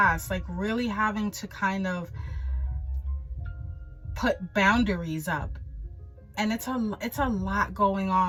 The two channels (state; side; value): identical; both; correlation 1.00